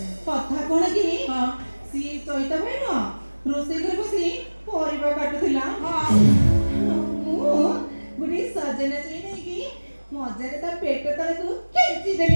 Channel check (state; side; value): inverted; both; correlation -1.00